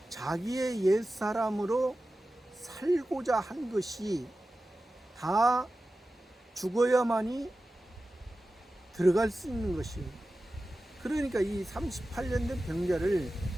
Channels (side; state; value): both; normal; correlation 0.94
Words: 자기의 옛사람으로 살고자 한 것이 다 죽어야만이 들어갈 수 있는 것이에요. 그러니까 이 38년 된 병자를